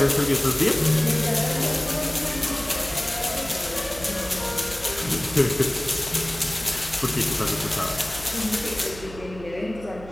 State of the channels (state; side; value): noise; right; hum, 16 dB below the sound